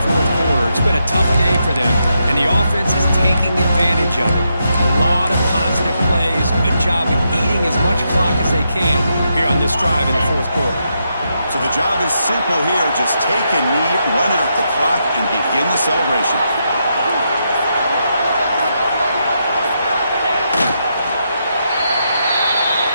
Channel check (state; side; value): inverted; both; correlation -0.82